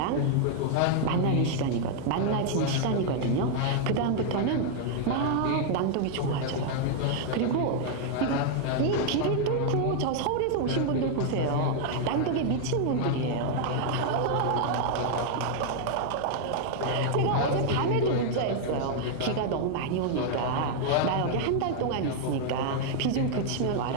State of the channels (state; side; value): different; both; correlation 0.00